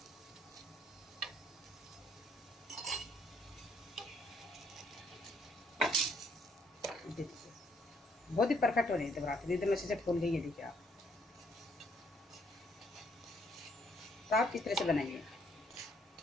बहुत ही परफेक्ट हो रही है पराठे, एकदम अच्छे से फूल गई है। देखिए आप, तो आप इस तरह से बनाइए।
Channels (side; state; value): both; normal; correlation 0.68